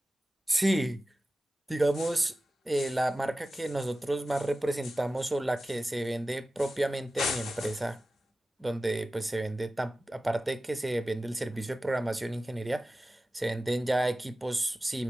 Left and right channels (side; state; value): both; normal; correlation 0.95